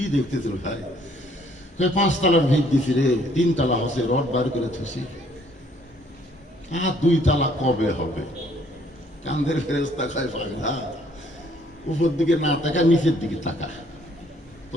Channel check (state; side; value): normal; both; correlation 0.63